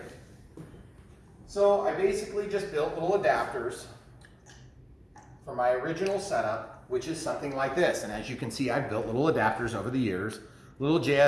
So, I basically just built little adapters for my original setup, which is something like this, and as you can see, I've built little adapters over the years, little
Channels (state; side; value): identical; both; correlation 1.00